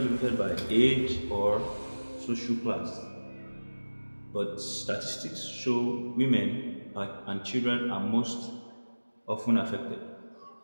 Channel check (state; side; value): inverted; both; correlation -1.00